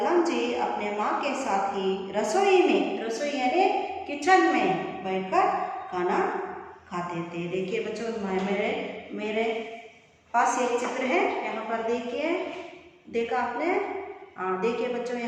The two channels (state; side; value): identical; both; correlation 1.00